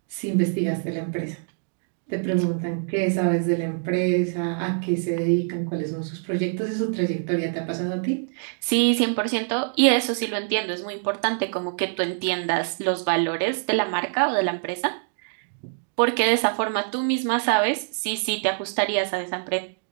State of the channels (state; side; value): silent; left; digital silence